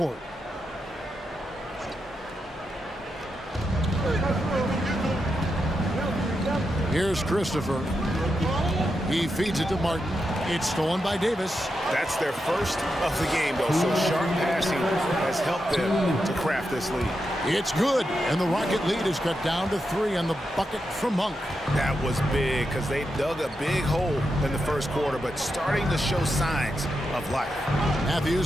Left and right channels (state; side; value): normal; both; correlation 0.86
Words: Here's Christopher. He feeds it to Martin. It's stolen by Davis. That's their first of the game, though, so sharp passing has helped them to craft this lead. It's good, and the Rocket lead is cut down to 3 on the bucket from Monk. That was big because they dug a big hole in the first quarter, but starting to show signs of life.